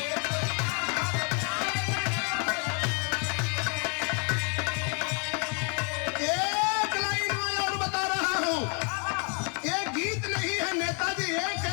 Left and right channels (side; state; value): right; quieter; 37.2 dB